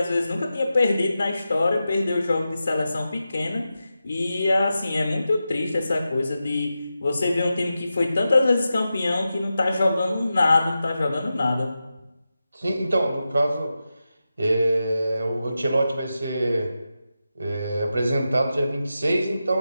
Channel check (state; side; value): inverted; both; correlation -0.91